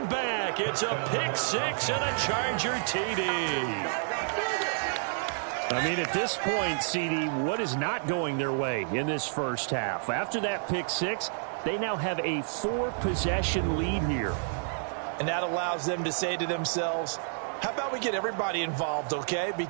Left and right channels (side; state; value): left; silent; digital silence